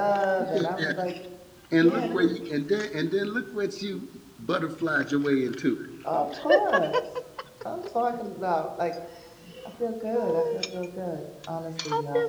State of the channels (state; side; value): identical; both; correlation 1.00